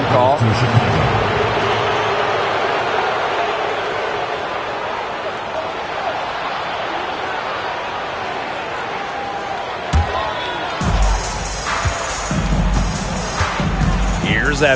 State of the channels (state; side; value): identical; both; correlation 1.00